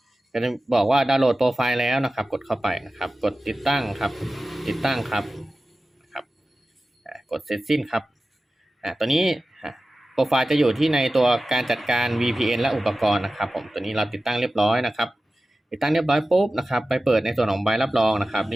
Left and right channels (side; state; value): both; normal; correlation 0.95